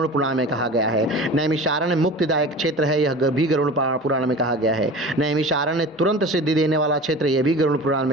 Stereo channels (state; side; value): normal; both; correlation 0.36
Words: पुराण में कहा गया है। नैमिषारण्य मुक्तिदायक क्षेत्र है, यह भी गरुड़ पुराण में कहा गया है। नैमिषारण्य तुरंत सिद्धि देने वाला क्षेत्र, यह भी गरुड़ पुराण